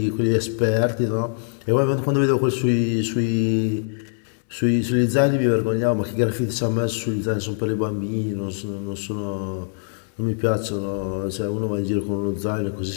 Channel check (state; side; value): silent; right; digital silence